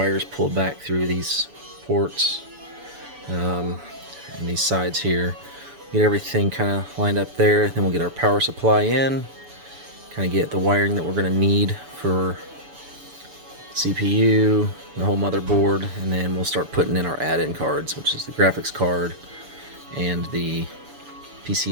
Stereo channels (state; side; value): late; left; 7.0 ms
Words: pulled back through these ports and these sides here. Get everything kind of lined up there. Then we'll get our power supply in, kind of get the wiring that we're gonna need for CPU, the whole motherboard, and then we'll start putting in our add-in cards, which is the graphics card and the